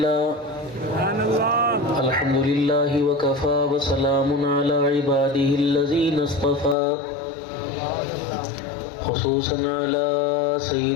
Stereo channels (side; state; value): right; drops out; at 6.8 s